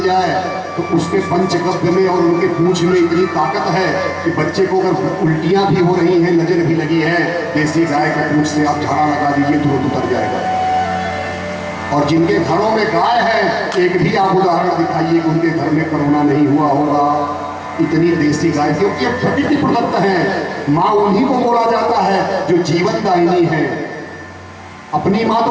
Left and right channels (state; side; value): identical; both; correlation 1.00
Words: जाए तो उसके पंचगव्य में और उनके पूंछ में इतनी ताकत है कि बच्चे को अगर उल्टियां भी हो रही हैं, नजर भी लगी है, देसी गाय के पूंछ से आप झाड़ा लगा दीजिए तुरंत उतर जाएगा। और जिनके घरों में गाय है, एक भी आप उदाहरण दिखाइए कि उनके घर में कोरोना नहीं हुआ होगा। इतनी देसी गाय, क्योंकि ये प्रकृति प्रदत्त है। माँ उन्हीं को बोला जाता है जो जीवन दायिनी है। अपनी माँ